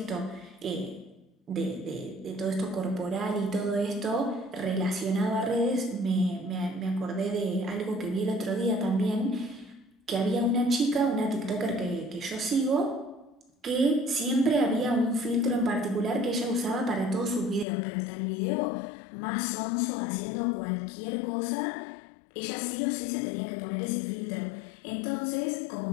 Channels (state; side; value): drops out; right; at 17.7 s